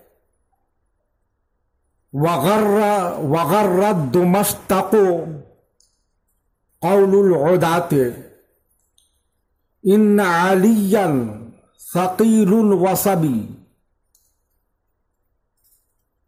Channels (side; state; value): both; identical; correlation 1.00